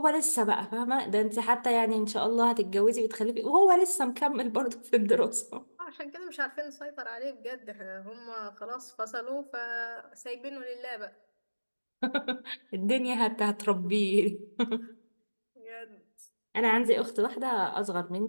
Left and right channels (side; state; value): both; inverted; correlation -1.00